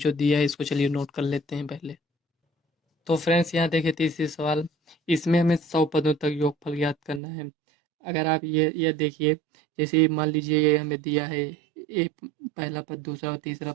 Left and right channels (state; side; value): drops out; left; at 7.2 s